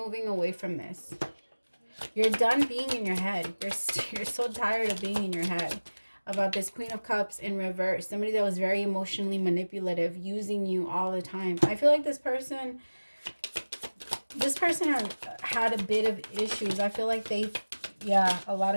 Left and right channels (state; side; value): inverted; both; correlation -1.00